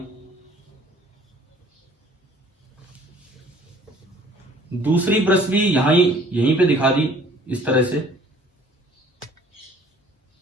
दूसरी ब्रश भी यहीं पे दिखा दी इस तरह से।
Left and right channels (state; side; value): normal; both; correlation 0.54